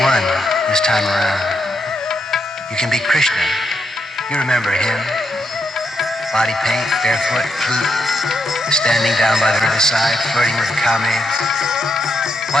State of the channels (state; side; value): normal; both; correlation 0.81